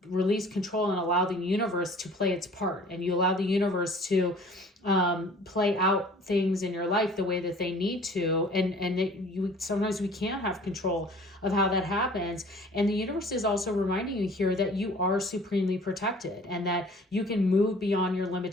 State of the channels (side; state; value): both; normal; correlation 0.49